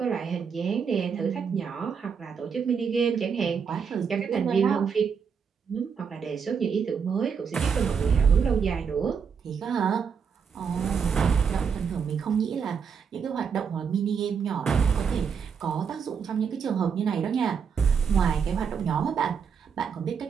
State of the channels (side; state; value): left; quieter; 6.5 dB